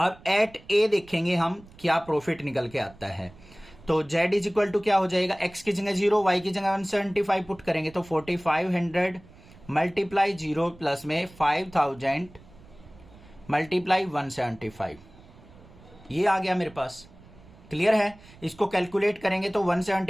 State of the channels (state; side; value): noise; right; rumble, 23 dB below the sound